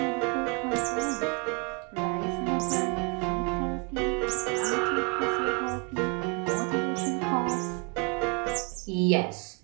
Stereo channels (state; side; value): quieter; left; 33.9 dB